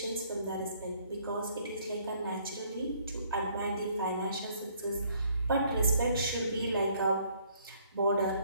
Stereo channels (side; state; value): both; inverted; correlation -0.64